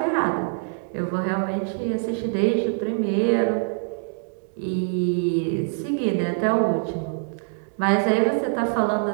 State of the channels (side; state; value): left; silent; 62 dB below the other